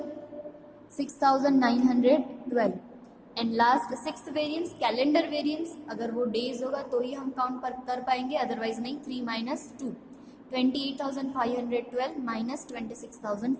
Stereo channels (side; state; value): both; identical; correlation 1.00